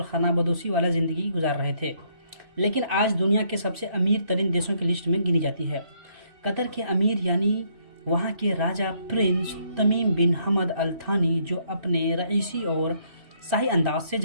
खानाबदोशी वाला ज़िंदगी गुजार रहे थे, लेकिन आज दुनिया के सबसे अमीर तरीन देशों की लिस्ट में गिनी जाती है। कतर के अमीर यानी वहाँ के राजा प्रिंस तमीम बिन हमद अल थानी, जो अपने रईसी और शाही अंदाज से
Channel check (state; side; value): late; left; 3.0 ms